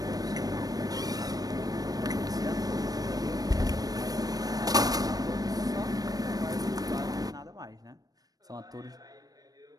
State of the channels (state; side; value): late; left; 0.18 ms